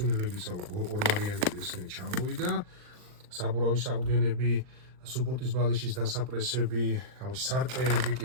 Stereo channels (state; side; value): late; left; 39 ms